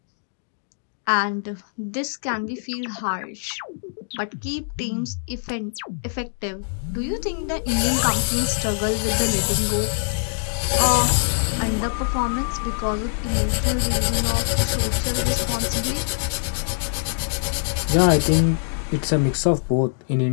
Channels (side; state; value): right; silent; digital silence